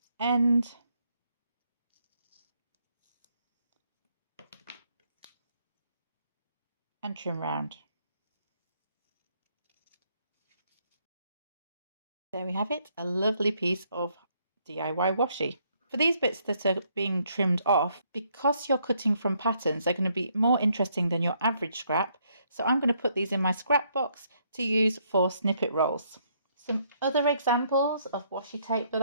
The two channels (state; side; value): inverted; both; correlation -0.71